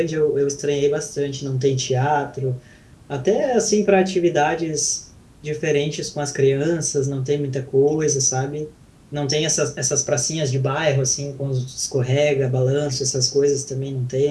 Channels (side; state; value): both; identical; correlation 1.00